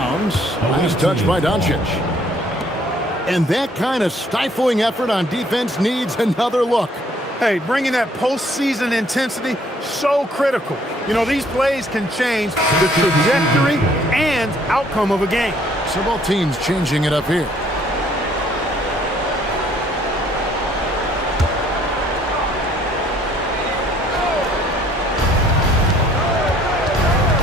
Nice touch by Doncic. And that kind of stifling effort on defense needs another look. Hey, bringing that postseason intensity, so critical. You know, these plays can change the trajectory and outcome of a game. So both teams changing it up here.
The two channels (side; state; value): both; normal; correlation 0.61